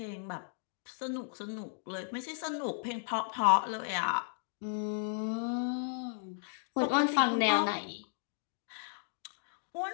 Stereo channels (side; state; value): right; silent; digital silence